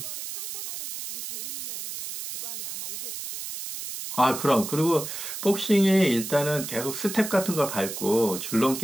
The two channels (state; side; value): noise; right; hiss, 7 dB below the sound